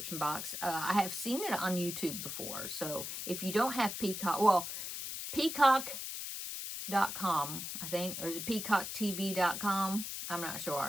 box. I have seen it on YouTube before. So if you don't have Peacock, well, Peacock.com, I think, or is it peacocktv.com? I'm not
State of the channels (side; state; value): left; noise; hiss, 5 dB below the sound